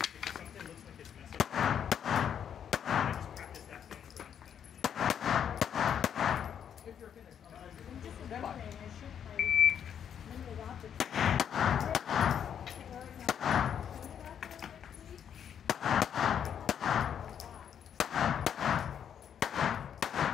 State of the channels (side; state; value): right; quieter; 8.6 dB